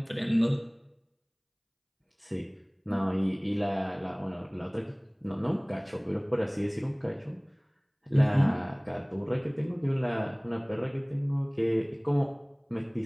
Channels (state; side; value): identical; both; correlation 1.00